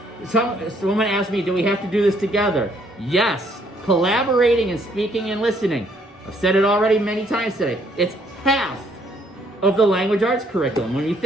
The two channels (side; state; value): both; normal; correlation 0.67